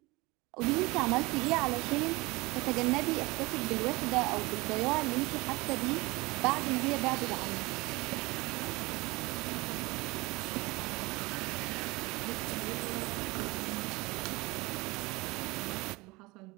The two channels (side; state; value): left; quieter; 23.4 dB